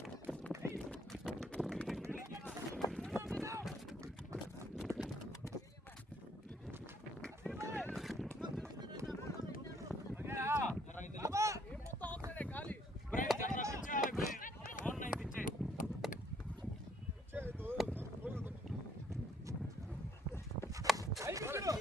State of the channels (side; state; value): both; normal; correlation 0.67